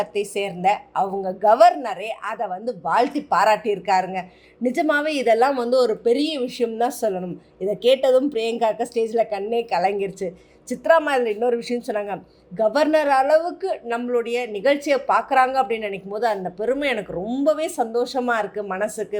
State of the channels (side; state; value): both; identical; correlation 1.00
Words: சேர்ந்த அவங்க கவர்னரே அதை வந்து வாழ்த்தி பாராட்டியிருக்காருங்க. நிஜமாகவே இதெல்லாம் வந்து ஒரு பெரிய விஷயம் தான் சொல்லணும். இதை கேட்டதும் பிரியங்காவுக்கு ஸ்டேஜில் கண்ணே கலங்கிருச்சு. சித்ராமா இதில் இன்னொரு விஷயம் சொன்னாங்க, கவர்னர் அளவுக்கு நம்மளுடைய நிகழ்ச்சியை பார்க்குறாங்க அப்படின்னு நினைக்கும் போது அந்த பெருமை எனக்கு ரொம்பவே சந்தோஷமாக இருக்குது, மனசுக்கு